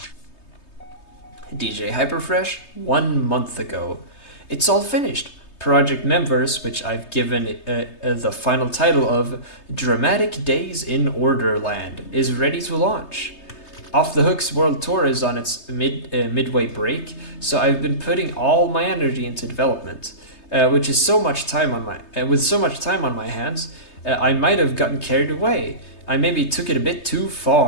DJ Hyperfresh 1 month ago. It's all finished. Project Members, which I've given the final title of Dramatic Days in Orderland, is ready to launch. Off the Hook's World Tour is on its midway break, so I've been putting all my energy into development, which is so much time on my with so much time on my hands, I might have gotten carried away. I maybe took it a bit too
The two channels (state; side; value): late; right; 3.2 ms